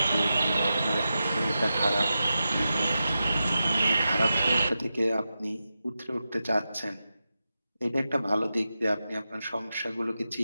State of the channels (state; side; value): inverted; both; correlation -0.91